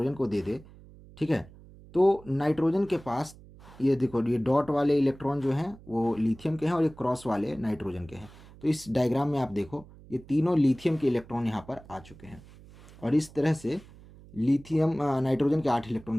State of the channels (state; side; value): noise; right; hum, 21 dB below the sound